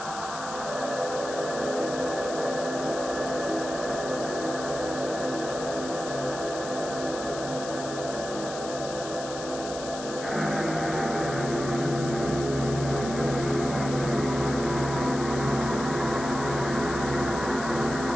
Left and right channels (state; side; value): noise; left; hiss, 11 dB below the sound